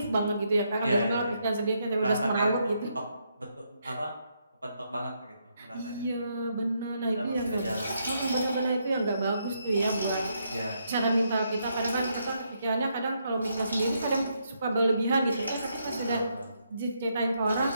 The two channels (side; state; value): both; inverted; correlation -0.77